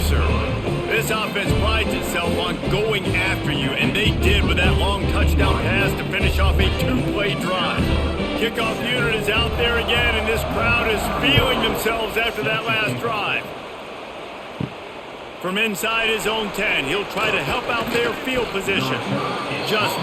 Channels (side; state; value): both; identical; correlation 1.00